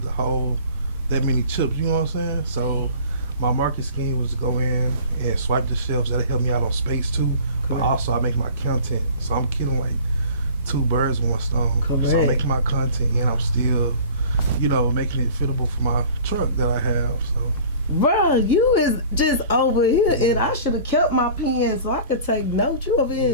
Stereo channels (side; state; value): both; inverted; correlation -0.44